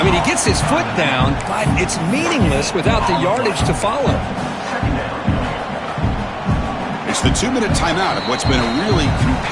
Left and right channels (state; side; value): identical; both; correlation 1.00